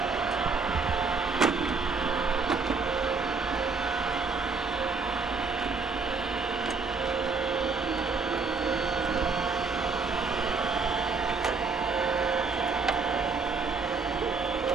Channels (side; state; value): left; quieter; 4.6 dB